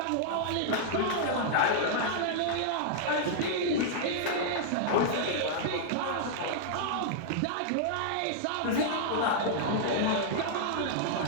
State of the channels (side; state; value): both; different; correlation -0.01